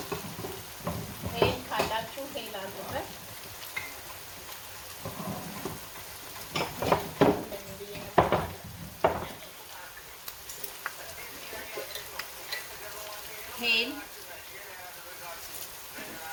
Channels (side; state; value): both; identical; correlation 1.00